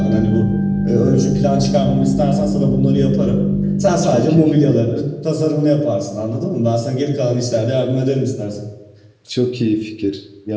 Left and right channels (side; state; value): both; identical; correlation 1.00